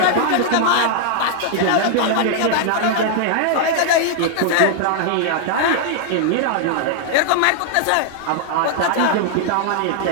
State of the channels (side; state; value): both; different; correlation 0.00